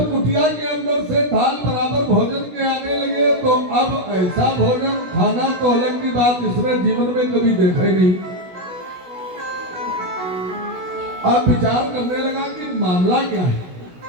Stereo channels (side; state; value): left; late; 16 ms